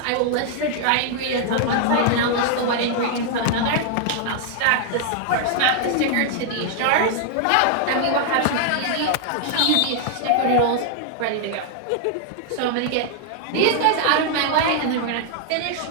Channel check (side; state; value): both; different; correlation 0.00